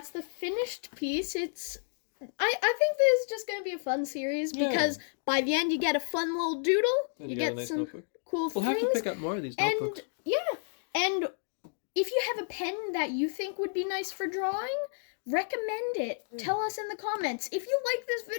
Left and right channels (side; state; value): right; silent; digital silence